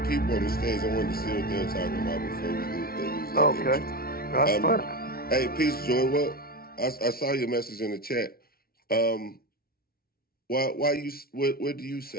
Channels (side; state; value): right; late; 0.44 ms